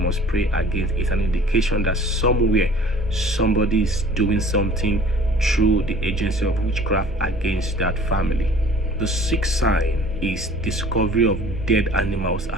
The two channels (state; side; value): normal; both; correlation 0.49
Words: pray against. It's an indication that somewhere somebody is doing something through the agency of witchcraft against that family. The sixth sign is discovery of dead animals